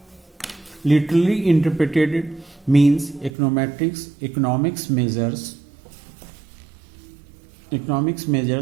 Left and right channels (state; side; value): drops out; left; at 3.3 s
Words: literally interpreted means econometrics. Economics measures